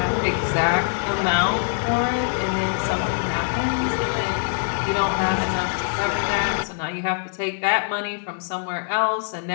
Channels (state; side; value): silent; right; digital silence